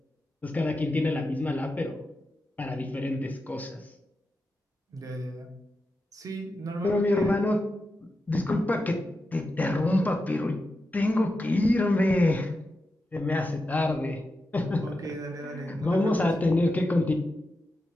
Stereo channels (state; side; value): normal; both; correlation 0.89